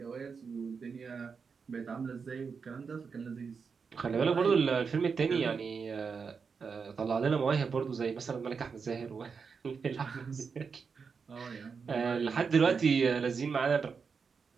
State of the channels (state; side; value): quieter; left; 5.6 dB